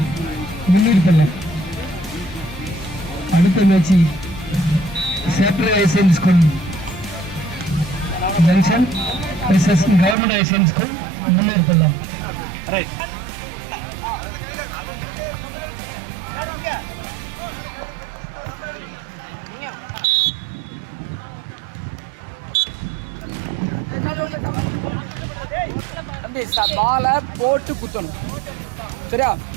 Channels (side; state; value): left; drops out; at 10.2 s